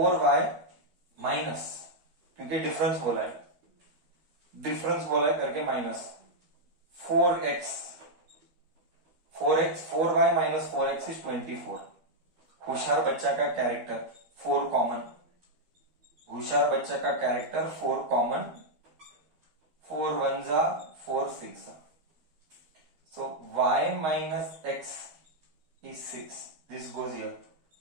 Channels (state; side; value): late; left; 12 ms